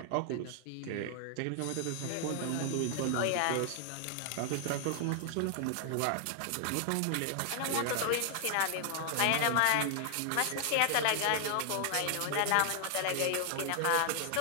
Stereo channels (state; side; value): different; both; correlation 0.00